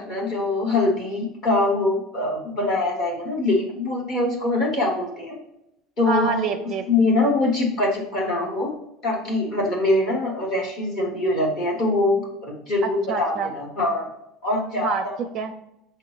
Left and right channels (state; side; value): normal; both; correlation 0.36